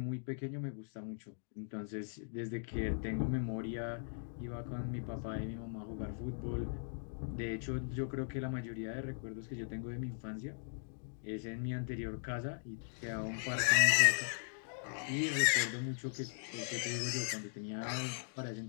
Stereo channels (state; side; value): silent; right; digital silence